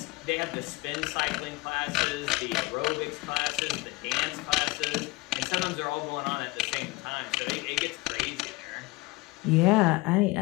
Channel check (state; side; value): quieter; right; 21.5 dB